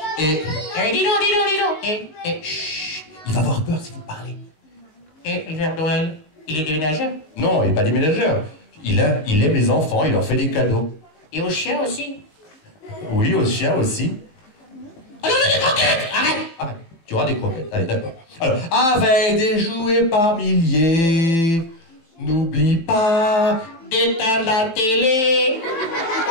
Et Eh, dis donc. Chut. il va avoir peur si vous parlez. Et le Père Noël, il est déménageur. Non, il n'est pas déménageur. Il aime les enfants, il leur fait des cadeaux. Et aux chiens aussi. Oui, aux chiens aussi. Ah non, des croquettes. Arrête. Tu auras des croquettes. Allez, d'accord. Alors, avec des jouets par milliers, n'oublie pas D'éteindre la télé.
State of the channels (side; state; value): right; late; 19 ms